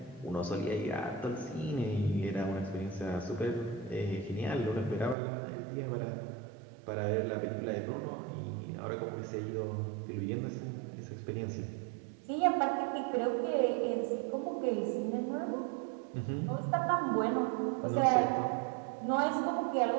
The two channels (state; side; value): drops out; left; at 5.2 s